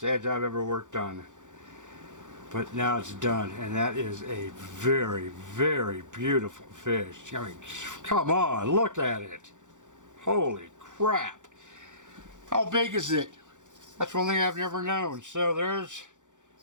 edge I've ever worked on. But now it's done, and that is a very, very beautiful fish. I mean, come on, look at it. Holy crap. How big is it? That's one thing I've never known. So there's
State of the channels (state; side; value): late; left; 0.86 ms